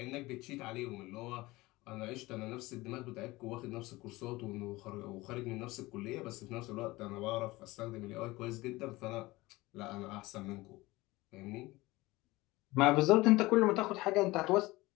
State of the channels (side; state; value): right; quieter; 20.3 dB